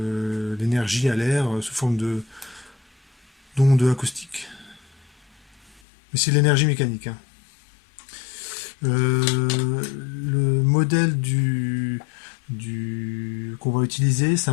à l'air sous forme d'ondes acoustiques. Mais c'est l'énergie mécanique. Hein. Le modèle qu'on va utiliser, c'est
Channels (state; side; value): drops out; right; at 5.8 s